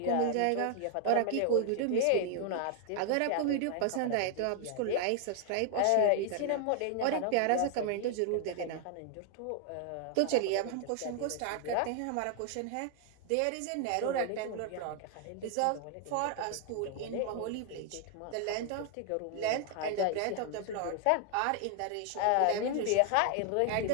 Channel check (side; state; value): both; different; correlation 0.00